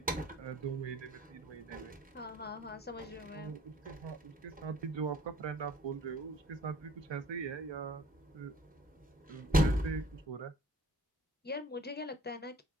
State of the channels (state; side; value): normal; both; correlation 0.54